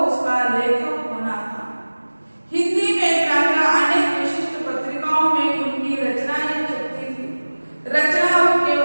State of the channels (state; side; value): inverted; both; correlation -1.00